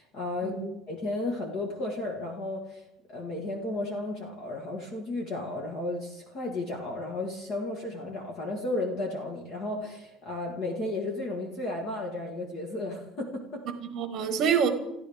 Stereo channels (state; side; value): normal; both; correlation 0.41